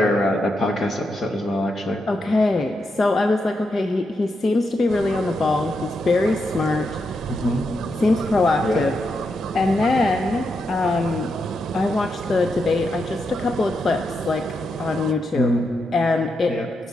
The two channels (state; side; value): normal; both; correlation 0.84